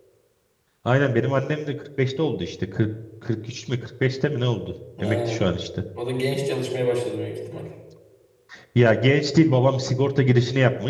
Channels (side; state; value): both; identical; correlation 1.00